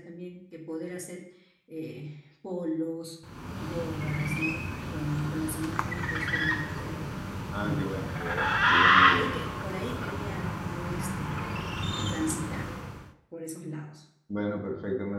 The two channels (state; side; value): identical; both; correlation 1.00